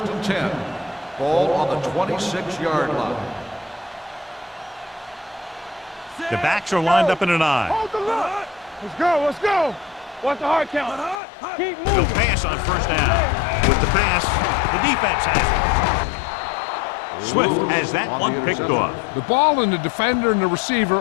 and 10. Ball on the 26-yard line. The backs are lined up in an I. Hold the line. Let's go. Watch the hard count. Keep He'll moving. pass on first down. With the pass, the defense has it. Swift has that one picked off. The ball and the defender and the receiver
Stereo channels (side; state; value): right; drops out; at 11.2 s